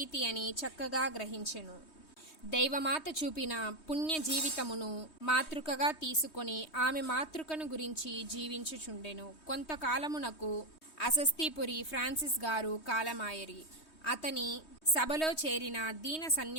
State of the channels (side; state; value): right; late; 3.2 ms